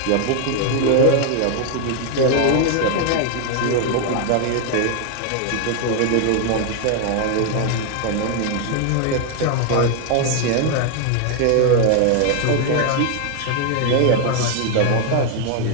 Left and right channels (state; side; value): different; both; correlation 0.00